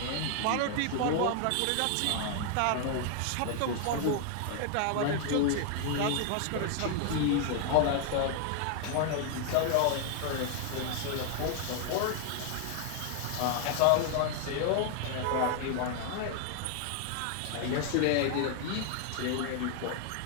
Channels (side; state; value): both; different; correlation 0.00